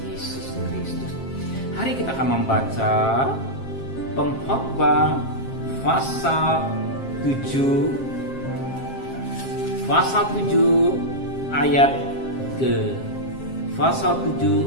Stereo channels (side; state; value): right; late; 7.5 ms